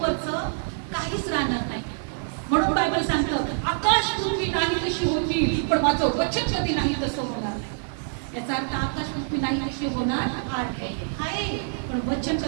काहीच राहणार नाही. म्हणून बायबल सांगतं, आकाश पृथ्वी नाही कशी होती, पण माझं वचन कधी नाही तसं होणार नाही. याचा अर्थ आकाश पृथ्वी नाही कशी होणार आहे, पण वचन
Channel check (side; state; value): left; silent; digital silence